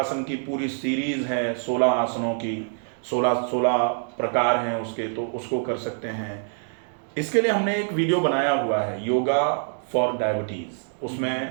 की पूरी सीरीज है 16 आसनों की, 16 प्रकार हैं उसके, तो उसको कर सकते हैं। इसके लिए हमने एक वीडियो बनाया हुआ है, योगा फॉर डायबिटीज़।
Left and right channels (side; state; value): left; silent; digital silence